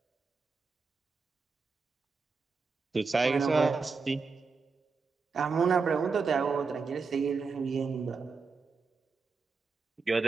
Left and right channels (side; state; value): left; quieter; 4.7 dB